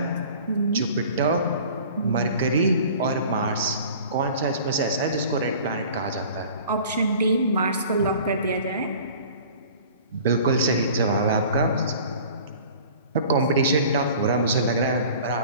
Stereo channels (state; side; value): inverted; both; correlation -0.45